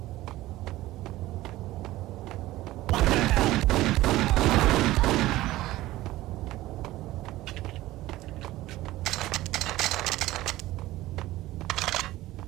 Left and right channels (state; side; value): quieter; left; 16.7 dB